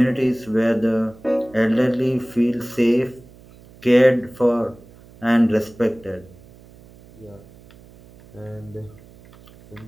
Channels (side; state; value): right; noise; hum, 24 dB below the sound